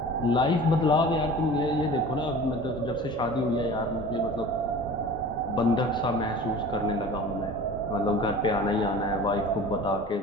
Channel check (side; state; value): both; normal; correlation 0.40